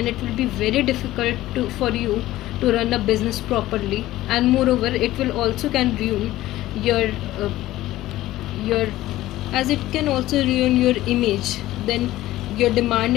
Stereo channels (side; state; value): right; quieter; 15.7 dB